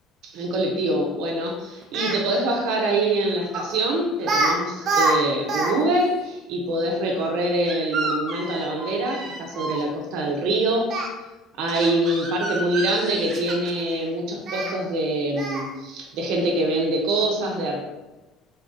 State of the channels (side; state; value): both; normal; correlation 0.45